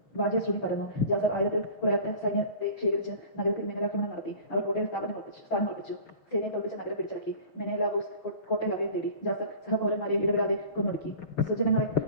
വാദ്യശ്രുതി പരന്നു. ജാസർ 1000-ൽ കുറയാത്ത സൈന്യത്തെ ശേഖരിച്ച് നഗരത്തിൽ മിന്നലാക്രമണം നടത്തി. അവർ കോട്ടയിൽ സ്ഥാനമുറപ്പിച്ചു. സേനയെ തോൽപ്പിച്ച നഗരം പിടിച്ചടക്കി. മെനേലാവൂസ് കോട്ടയിൽ അഭയം തേടി. ജാസർ സഹപൗരന്മാരെ ഇടപെടാതെ കൊന്നൊടുക്കി. സ്വജനങ്ങളെ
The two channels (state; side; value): late; right; 6.4 ms